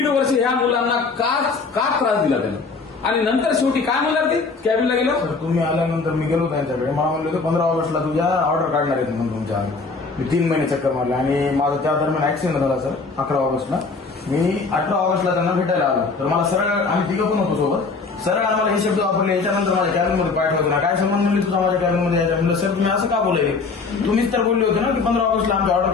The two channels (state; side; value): quieter; right; 4.3 dB